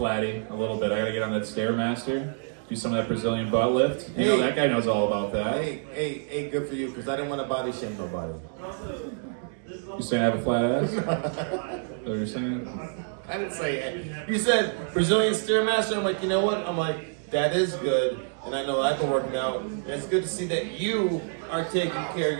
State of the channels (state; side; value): silent; left; 60 dB below the other